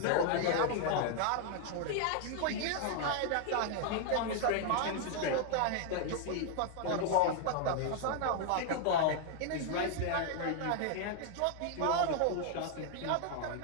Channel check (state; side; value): different; both; correlation 0.00